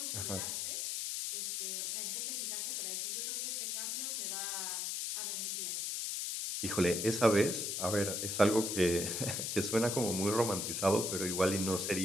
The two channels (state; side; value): noise; left; hiss, 1 dB below the sound